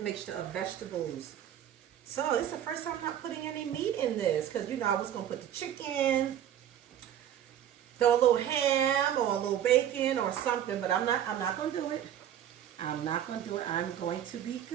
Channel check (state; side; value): quieter; left; 10.5 dB